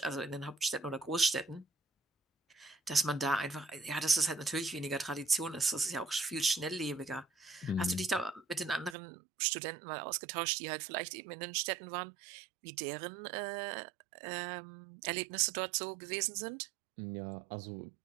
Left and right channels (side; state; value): left; drops out; at 9.0 s